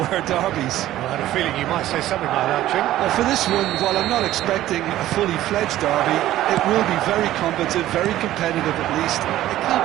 were derbies. Well, I had a feeling you might say something like that, Jim. Well, for this one, while I'm not expecting a fully fledged derby, it will be very combative, very competitive at least. It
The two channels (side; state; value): left; quieter; 14.1 dB